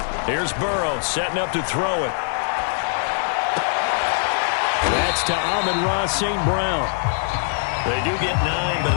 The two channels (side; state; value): right; silent; 64 dB below the other